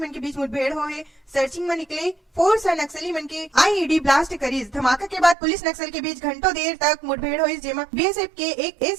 के बीच मुठभेड़ हो है। सर्चिंग में निकले फोर्स और नक्सली मन के आईईडी ब्लास्ट करीज। धमाका के बाद पुलिस नक्सल के बीच घंटों देर तक मुठभेड़ हुई, जेमा बीएसएफ के एक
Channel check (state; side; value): drops out; left; at 5.4 s